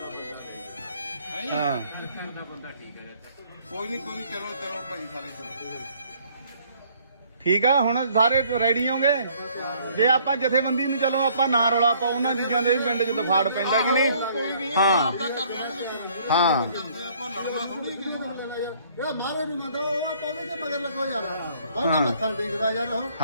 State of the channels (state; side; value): inverted; both; correlation -0.61